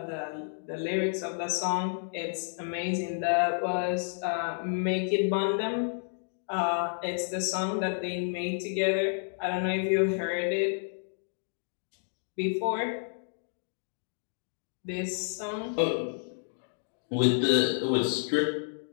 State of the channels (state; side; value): silent; right; digital silence